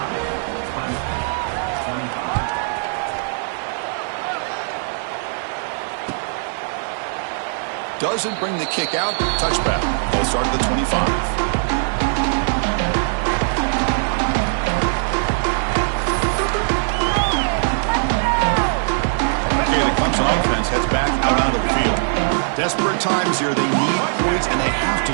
Doesn't bring the kick out. Touchback. Ball start at the 25. Okay, the Clemson offense heads back out onto the field. Desperate times here. They need points, and they have to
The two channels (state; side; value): silent; left; digital silence